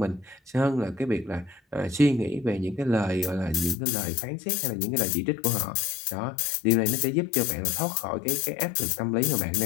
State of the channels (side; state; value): right; drops out; at 3.8 s